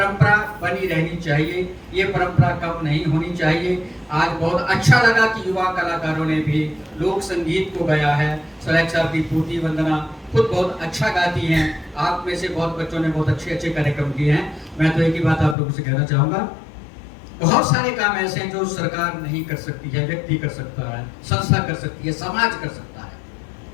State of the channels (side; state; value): right; drops out; at 15.6 s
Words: बनी रहनी चाहिए, ये परंपरा कम नहीं होनी चाहिए। आज बहुत अच्छा लगा कि युवा कलाकारों ने भी लोक संगीत को गाया है। सुरैख साहब की पूर्ति वंदना खुद बहुत अच्छा गाती हैं, आप में से बहुत बच्चों ने बहुत अच्छे अच्छे कार्यक्रम किए हैं। मैं तो एक ही बात आप लोगों से कहना चाहूँगा, बहुत सारे काम ऐसे हैं जो सरकार नहीं कर सकती है, व्यक्ति कर सकता है, संस्था कर सकती है, समाज कर सकता है।